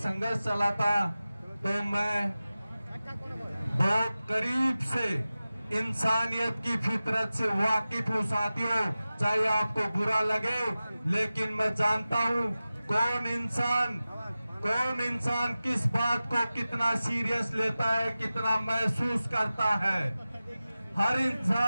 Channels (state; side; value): inverted; both; correlation -0.96